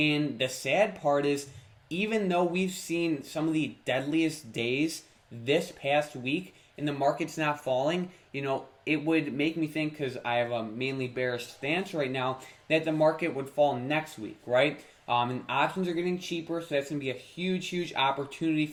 the sad part is, even though we've seen some of the deadliest days this past week and the market's not falling, it would make me think, because I have a mainly bearish stance right now, that the market would fall next week, right? And options are getting cheaper, so that's going to be a huge, huge opportunity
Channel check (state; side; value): identical; both; correlation 1.00